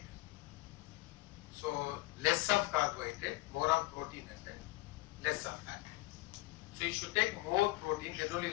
So less of carbohydrate, more of protein and less of fat. So you should take more protein, then only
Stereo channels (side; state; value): right; quieter; 20.9 dB